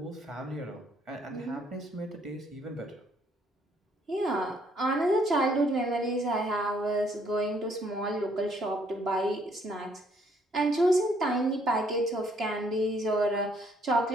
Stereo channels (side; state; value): both; normal; correlation 0.67